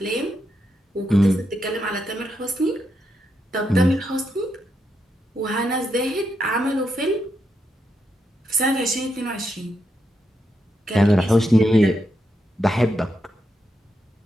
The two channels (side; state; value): both; normal; correlation 0.82